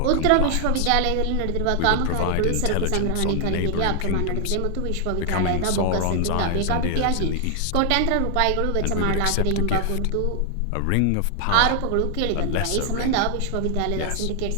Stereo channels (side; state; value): both; different; correlation 0.00